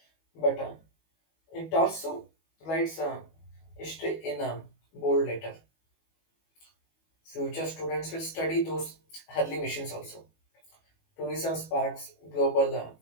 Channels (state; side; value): late; right; 18 ms